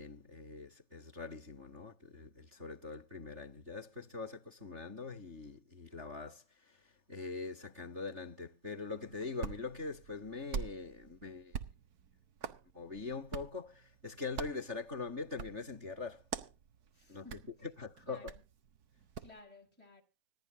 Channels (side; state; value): left; late; 4.6 ms